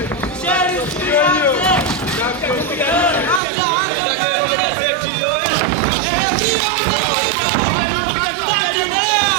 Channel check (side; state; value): left; drops out; at 3.4 s